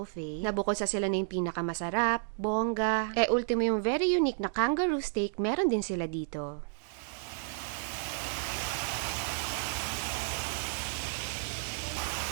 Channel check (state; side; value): silent; left; digital silence